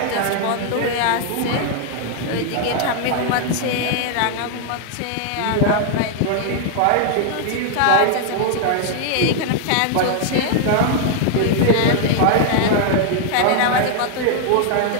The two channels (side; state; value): both; different; correlation 0.00